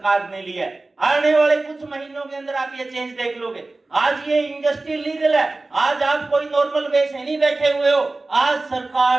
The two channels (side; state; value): left; quieter; 3.2 dB